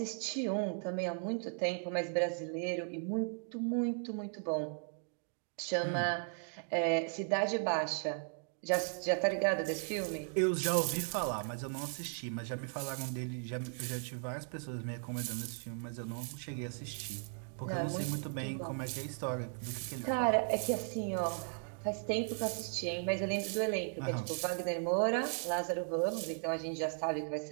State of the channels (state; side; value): silent; left; 53 dB below the other